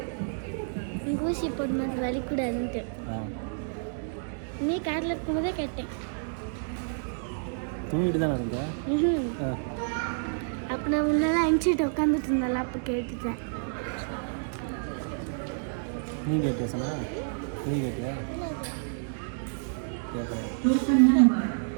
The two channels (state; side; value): silent; left; digital silence